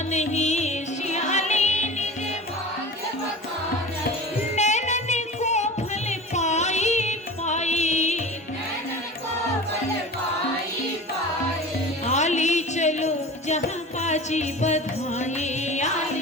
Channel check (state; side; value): normal; both; correlation 0.34